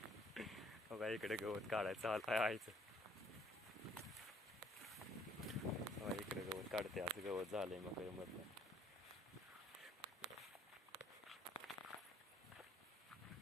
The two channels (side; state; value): both; normal; correlation 0.62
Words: बघा इकडे गवत काढायचं आयचं. बघा इकडे गवत काढते, असं गवत झालंय मग मधलं.